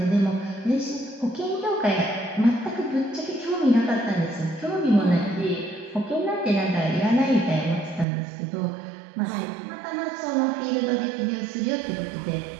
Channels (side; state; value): left; drops out; at 8.1 s